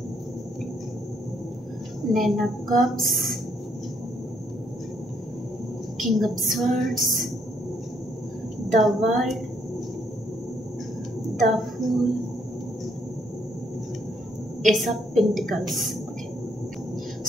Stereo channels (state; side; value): normal; both; correlation 0.71